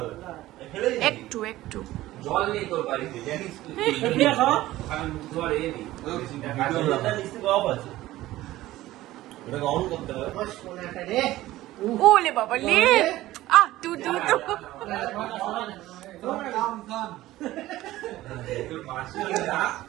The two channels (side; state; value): left; quieter; 16.1 dB